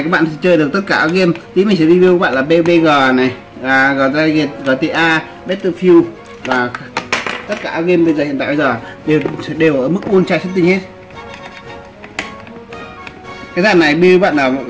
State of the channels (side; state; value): both; identical; correlation 1.00